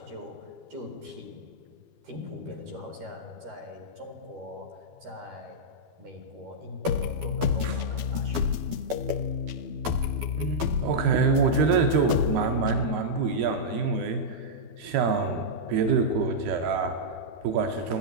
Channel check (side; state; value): left; late; 12 ms